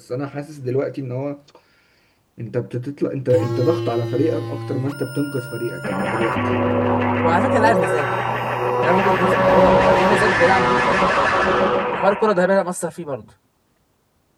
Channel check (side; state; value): both; identical; correlation 1.00